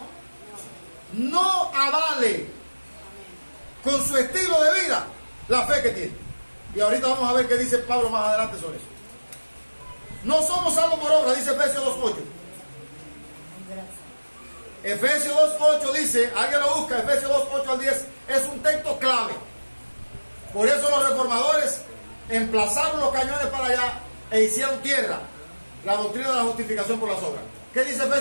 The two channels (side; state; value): both; inverted; correlation -1.00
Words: no avale con su estilo de vida la fe que tiene. Y ahorita vamos a ver qué dice Pablo más adelante sobre eso. No somos salvos por obra, dice Efesios 2.8. Efesios 2.8 dice, alguien lo busca, Efesios 2.8 al 10, es un texto clave. Por eso los reformadores emplazaron los cañones para allá e hicieron tierra la doctrina de la justificación por las obras. ¿Qué dice